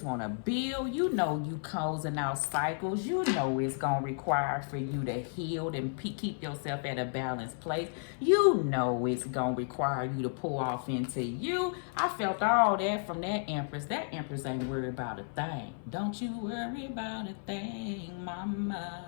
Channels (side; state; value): right; silent; 56 dB below the other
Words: want to build. You know you closing out cycles. You know it's going to require for you to heal and keep yourself at a balanced place. You know it's going to require you to pull off into you. I felt all that from that Empress. That Empress ain't worried about a thing. Don't you worry about a thing,